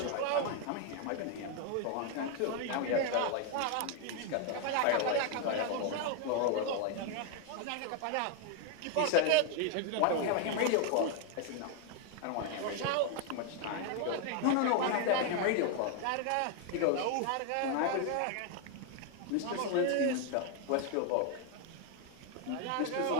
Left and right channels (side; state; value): both; different; correlation 0.01